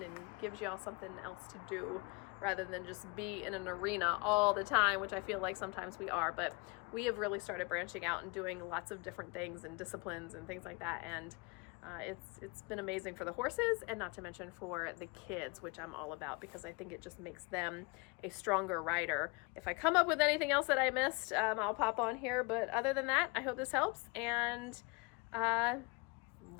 and gives y'all something else to do rather than just be in an arena all the time, which I feel like sometimes we are. But we have really started branching out and doing lots of different things and disciplines and things like that, and it's been amazing for the horses, and not to mention for the kids, which I'm all about, because I think it just makes them a stronger rider. If I come up with anything else that I missed, I'll pop on here, but other than that, I hope this helps, and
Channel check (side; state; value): right; quieter; 28.8 dB